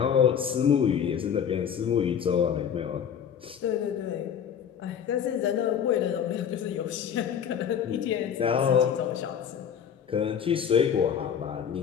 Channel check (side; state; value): right; quieter; 8.2 dB